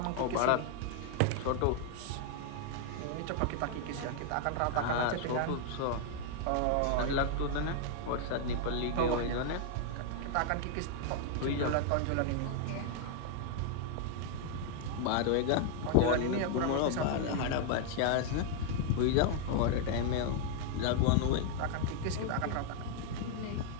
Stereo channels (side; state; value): both; different; correlation 0.00